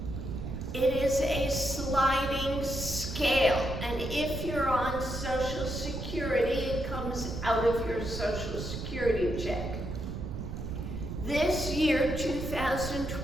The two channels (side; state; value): right; noise; rumble, 6 dB below the sound